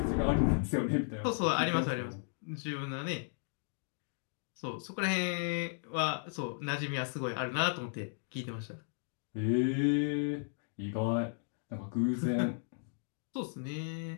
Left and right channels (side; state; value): right; silent; digital silence